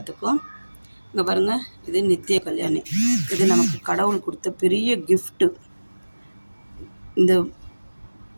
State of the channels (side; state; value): both; inverted; correlation -1.00